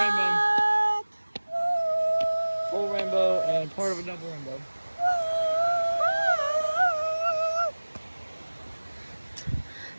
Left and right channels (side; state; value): both; inverted; correlation -1.00